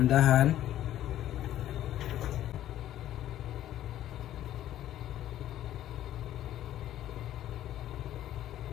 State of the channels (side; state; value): right; quieter; 12.6 dB